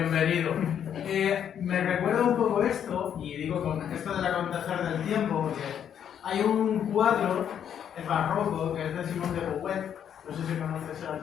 Me recuerda un poco esto, y digo con esto del acontecer del tiempo, porque hay un cuadro, el barroco, que es de Simón de Beauvoir, no sé si conoces al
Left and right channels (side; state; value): right; quieter; 9.0 dB